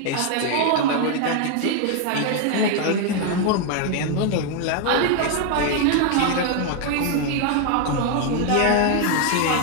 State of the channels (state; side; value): different; both; correlation 0.01